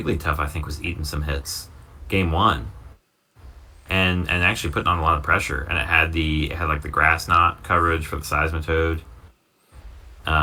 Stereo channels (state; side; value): identical; both; correlation 1.00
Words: I think, was eating some hits game 1, and actually putting on a lot of pressure. And it had like the grass knot coverage for the Seismitoad.